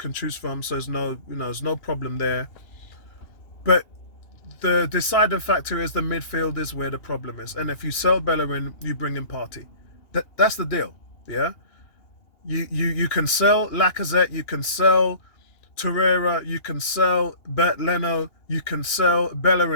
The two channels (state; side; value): late; right; 2.9 ms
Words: choose from, so there's no problem there. But the deciding factor is the midfield is where the problem is. And if you sell Bellerin, you bring in Partey. That's the deal, yeah? You can sell Lacazette, you can sell Torreira, you can sell Bert Leno, you can sell